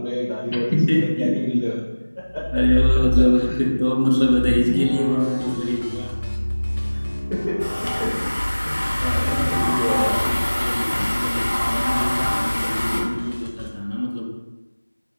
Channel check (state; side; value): inverted; both; correlation -1.00